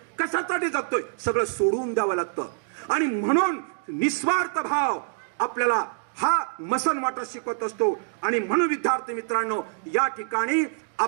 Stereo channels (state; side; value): silent; left; digital silence